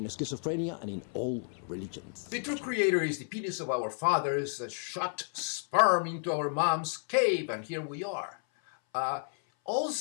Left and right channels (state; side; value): silent; right; 57 dB below the other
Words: schizophrenia and in all religions. The true creator is the penis of our fathers that shot sperm into our mom's cave, and here we are.